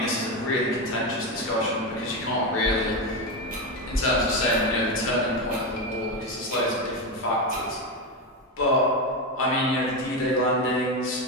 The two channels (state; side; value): normal; both; correlation 0.13